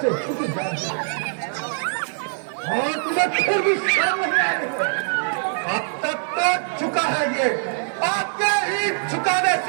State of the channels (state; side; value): silent; left; digital silence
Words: झुक जाती और तुम्हें फिर भी शर्म नहीं आ रही। अब तक तो झुका है ये, आपके ही झुकाने